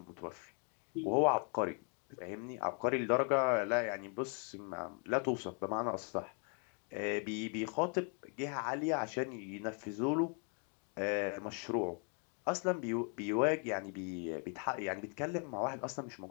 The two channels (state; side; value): quieter; right; 40.0 dB